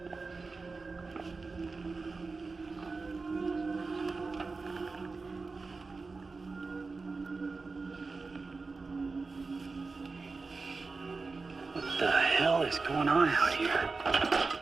What the hell is going on out here?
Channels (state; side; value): quieter; left; 4.0 dB